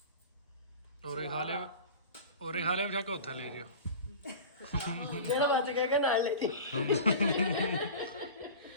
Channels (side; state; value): both; inverted; correlation -0.35